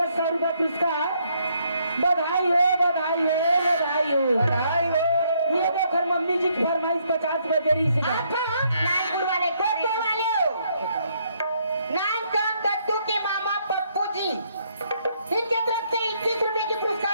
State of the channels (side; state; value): both; inverted; correlation -0.72